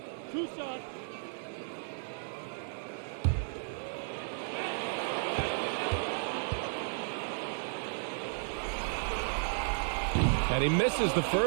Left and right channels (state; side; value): silent; left; digital silence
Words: Two shots. And he misses the